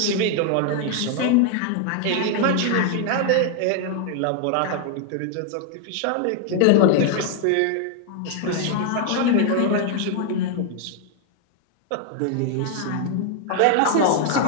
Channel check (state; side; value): different; both; correlation 0.00